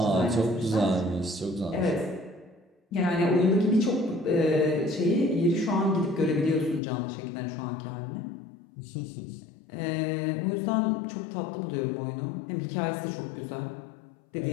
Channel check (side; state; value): right; drops out; at 6.8 s